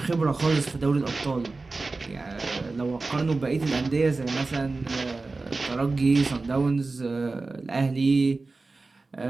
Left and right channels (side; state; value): left; quieter; 3.6 dB